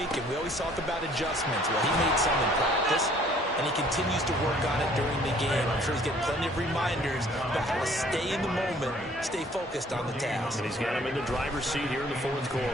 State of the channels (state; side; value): normal; both; correlation 0.58